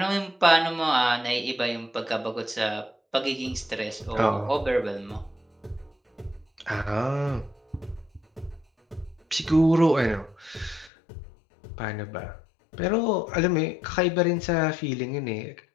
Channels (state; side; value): drops out; right; at 10.9 s